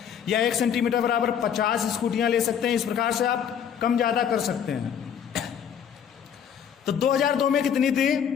या 1 सेंटीमीटर बराबर 50 स्कूटियाँ ले सकते हैं। इस प्रकार से आप कम ज़्यादा कर सकते हैं। तो 2002 में कितनी थी,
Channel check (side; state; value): right; quieter; 8.3 dB